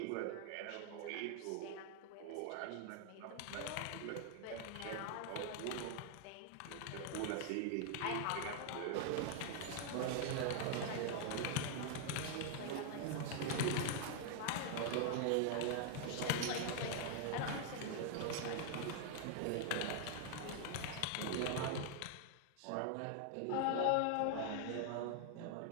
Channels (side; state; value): both; different; correlation 0.00